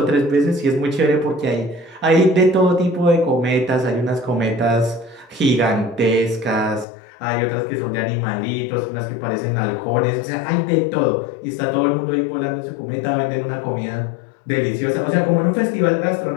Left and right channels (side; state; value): right; drops out; at 6.9 s